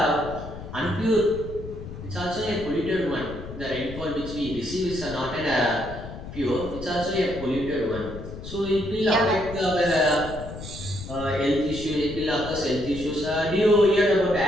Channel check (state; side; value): noise; left; rumble, 11 dB below the sound